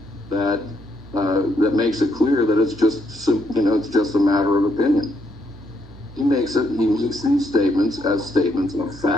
that makes it clear that it's just a matter of opinion. He makes these statements as statements of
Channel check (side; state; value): both; normal; correlation 0.74